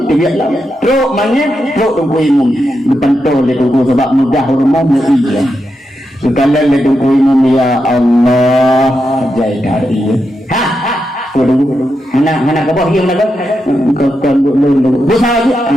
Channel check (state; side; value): normal; both; correlation 0.86